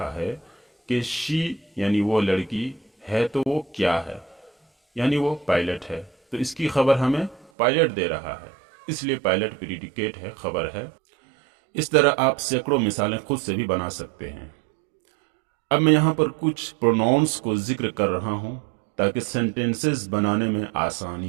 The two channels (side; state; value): left; drops out; at 7.5 s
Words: ہے کہ شی یعنی وہ لڑکی ہے تو وہ کیا ہے، یعنی وہ پائلٹ ہے، تو اس کی خبر ہمیں پائلٹ دے رہا ہے، اس لیے پائلٹ پریڈیکیٹ ہے، خبر ہے۔ اس طرح آپ سینکڑوں مثالیں خود سے بھی بنا سکتے ہیں۔ اب میں یہاں پر کچھ پروناؤنس کو ذکر کر رہا ہوں تاکہ سینٹینسز بنانے میں